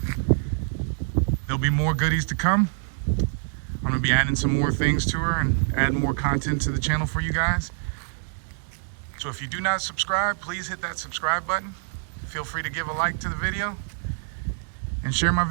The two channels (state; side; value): silent; left; digital silence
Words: There'll be more goodies to come. I'm gonna be adding some more things to her and add more content to the channel for you guys. So if you do not subscribe, please hit that subscribe button. Feel free to give a like to the video and share my